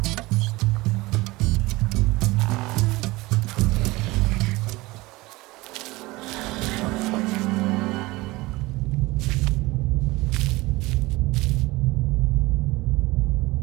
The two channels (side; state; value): left; quieter; 21.1 dB